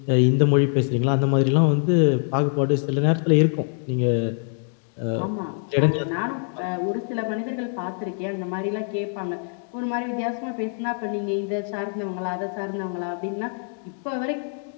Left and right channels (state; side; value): silent; right; 57 dB below the other